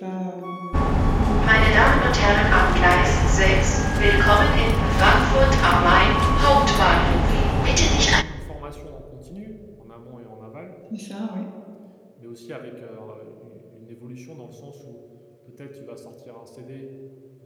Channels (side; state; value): both; identical; correlation 1.00